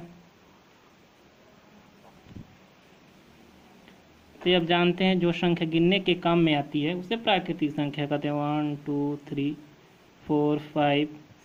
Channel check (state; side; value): identical; both; correlation 1.00